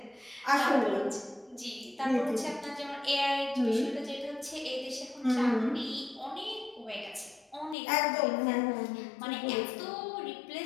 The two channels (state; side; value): drops out; right; at 7.8 s